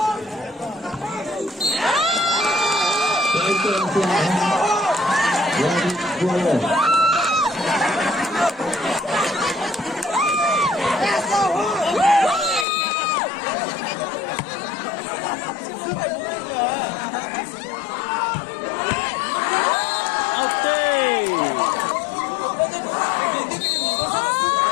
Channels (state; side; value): drops out; right; at 12.7 s